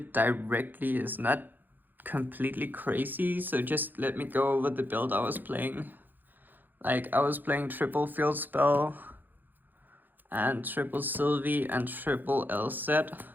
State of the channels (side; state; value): left; late; 0.088 ms